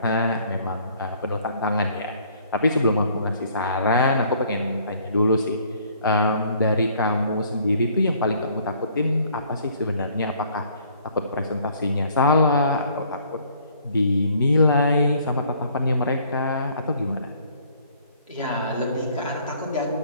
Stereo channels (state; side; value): inverted; both; correlation -0.60